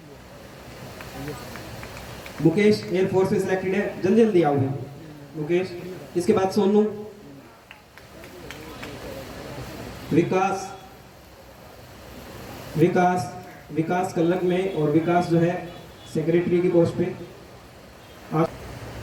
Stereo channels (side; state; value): both; identical; correlation 1.00